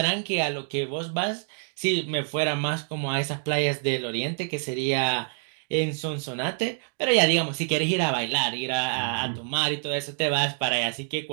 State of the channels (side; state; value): left; silent; 58 dB below the other